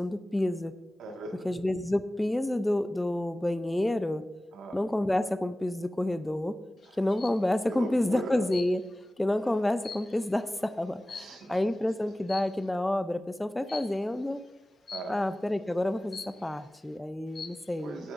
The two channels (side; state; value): both; normal; correlation 0.97